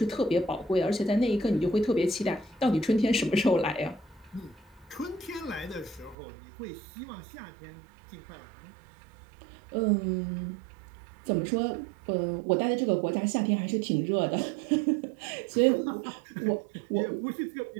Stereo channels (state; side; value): drops out; left; at 6.2 s